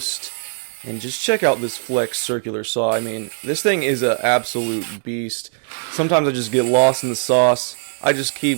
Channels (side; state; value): left; silent; digital silence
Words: And just check out this flex circular saw. I mean, this thing is an absolute beast. Sometimes I just get lost in the sauce. I just